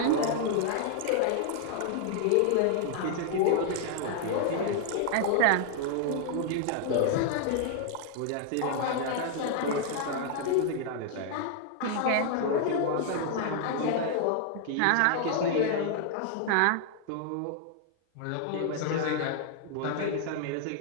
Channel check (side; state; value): both; different; correlation 0.00